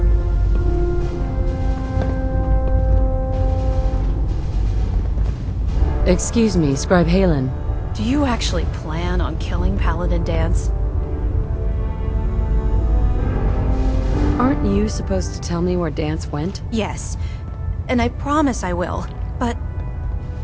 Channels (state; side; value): identical; both; correlation 1.00